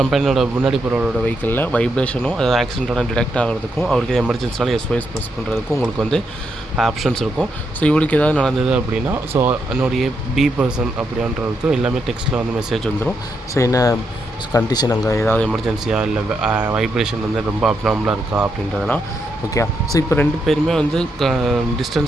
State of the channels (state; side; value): normal; both; correlation 0.81